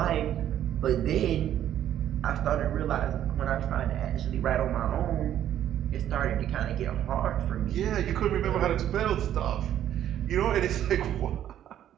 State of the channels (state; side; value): quieter; left; 11.1 dB